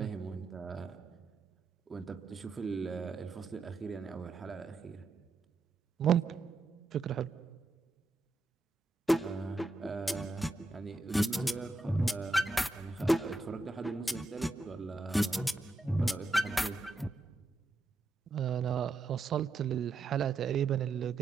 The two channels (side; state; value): left; quieter; 3.1 dB